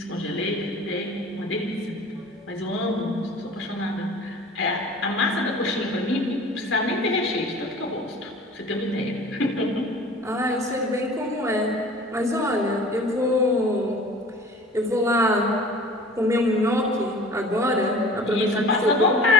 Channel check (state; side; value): normal; both; correlation 0.44